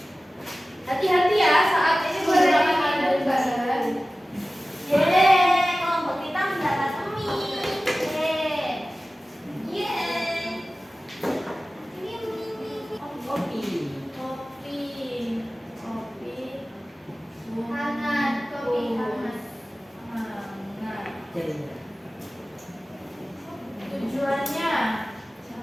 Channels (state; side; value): normal; both; correlation 0.96